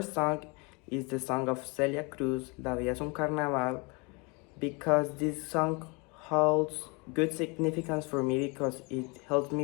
song is the song of Celia Cruz, La Vida es un Carnaval, because this song holds good significance for me because it helps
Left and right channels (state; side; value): quieter; right; 30.0 dB